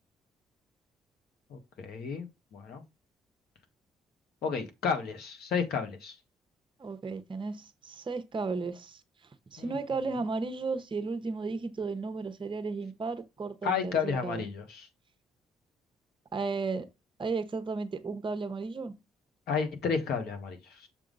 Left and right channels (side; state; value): both; normal; correlation 0.60